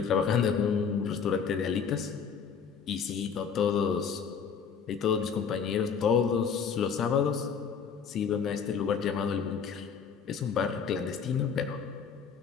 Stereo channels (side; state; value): right; quieter; 6.6 dB